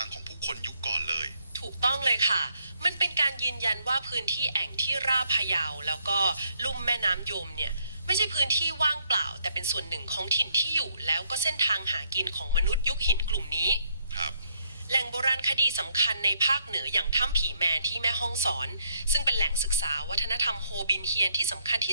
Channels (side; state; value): both; inverted; correlation -0.71